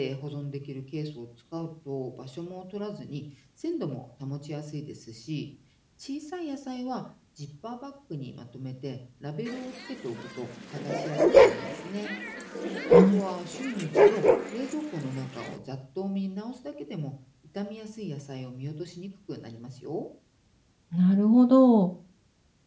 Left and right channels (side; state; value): both; identical; correlation 1.00